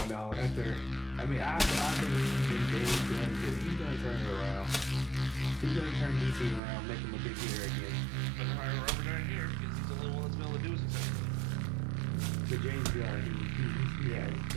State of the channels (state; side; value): drops out; left; at 6.6 s